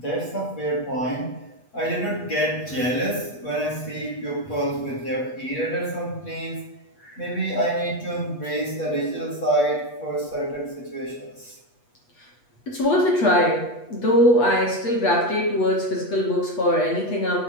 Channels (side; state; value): right; late; 8.2 ms